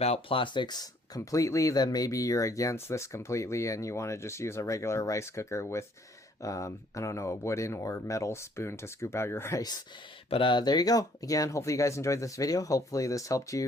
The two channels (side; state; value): both; normal; correlation 0.63